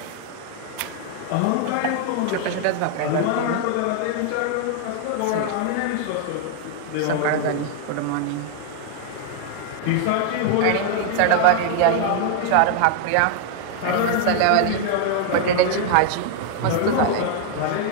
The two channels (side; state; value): both; different; correlation 0.00